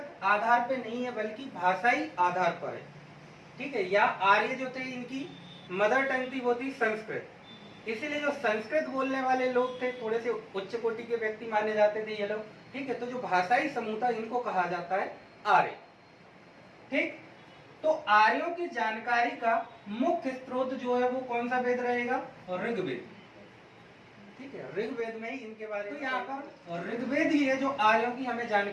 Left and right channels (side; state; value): both; identical; correlation 1.00